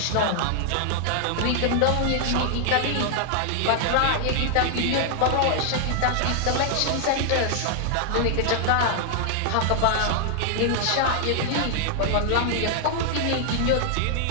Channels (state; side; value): different; both; correlation 0.00